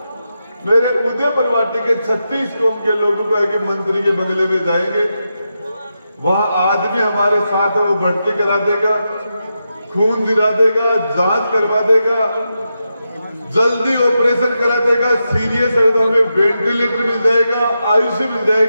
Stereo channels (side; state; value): both; inverted; correlation -0.87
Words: मेरे उदयपुर वाटी के 36 कौम के लोगों को आगे मंत्री के बंगले में जाएंगे, वहां आदमी हमारे साथ है, वो भर्ती करा देगा, खून दिला देगा, जांच करवा देगा, जल्दी ऑपरेशन करा देगा, सीरियस है तो हमें वेंटिलेटर मिल जाएगा, आईसीयू मिल